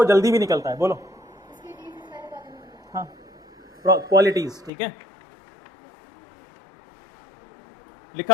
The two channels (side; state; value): right; drops out; at 4.7 s